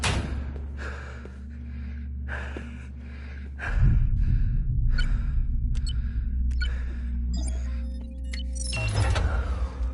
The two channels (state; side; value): identical; both; correlation 1.00